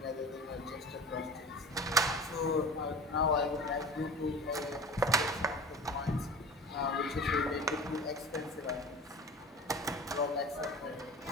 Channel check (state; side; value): normal; both; correlation 0.37